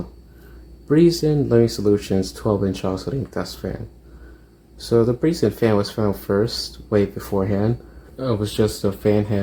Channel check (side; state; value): both; identical; correlation 1.00